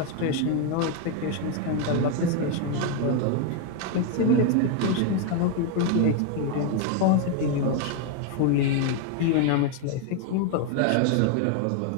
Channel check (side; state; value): both; different; correlation 0.01